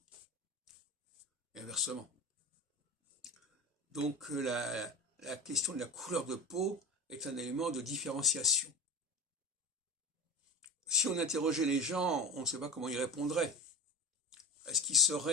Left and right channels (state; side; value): normal; both; correlation 0.29